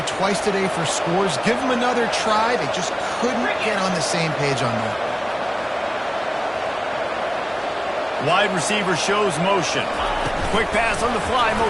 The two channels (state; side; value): identical; both; correlation 1.00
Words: twice today for scores. Give him another try. They just couldn't get on the same page on that. Wide receiver shows motion. Quick pass on the fly